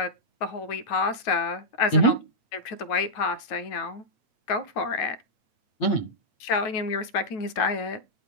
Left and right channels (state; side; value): late; right; 9.3 ms